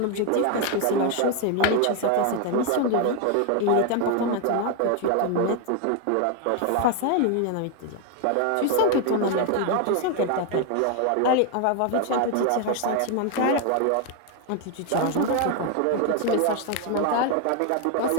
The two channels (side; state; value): both; different; correlation 0.01